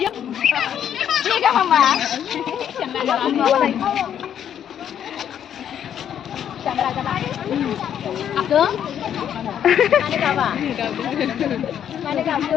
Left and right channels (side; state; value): right; quieter; 9.5 dB